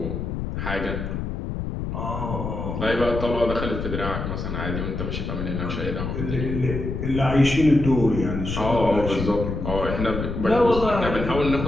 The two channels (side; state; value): left; noise; rumble, 4 dB below the sound